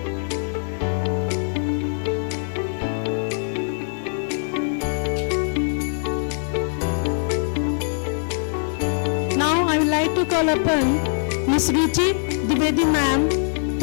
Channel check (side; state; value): right; silent; digital silence